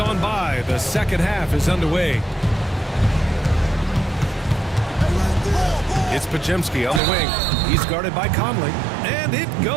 by, the second half is underway. It's Pajimski on the wing. He's guarded by Conley. And it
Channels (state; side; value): drops out; left; at 7.0 s